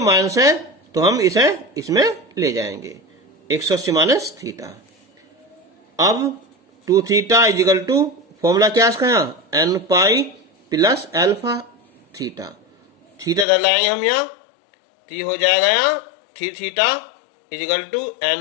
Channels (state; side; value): drops out; right; at 13.5 s